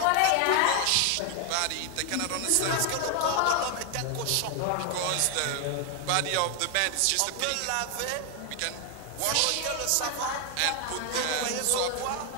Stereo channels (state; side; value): different; both; correlation 0.00